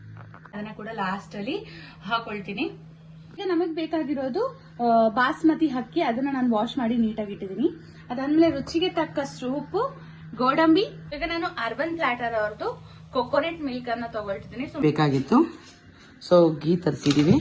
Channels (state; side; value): identical; both; correlation 1.00